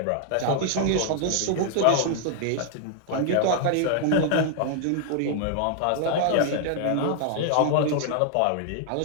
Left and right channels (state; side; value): different; both; correlation 0.00